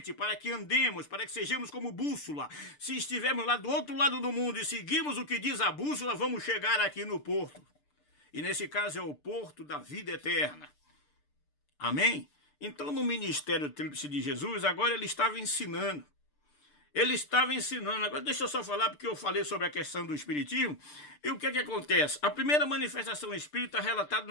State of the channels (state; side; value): late; right; 6.7 ms